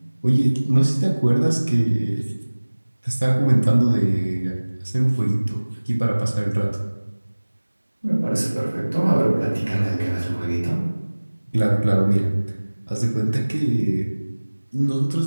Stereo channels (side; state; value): both; inverted; correlation -1.00